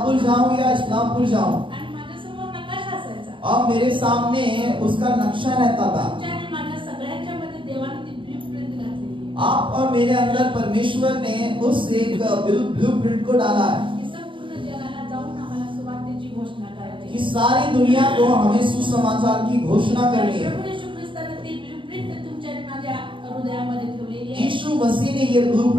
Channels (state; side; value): late; left; 0.24 ms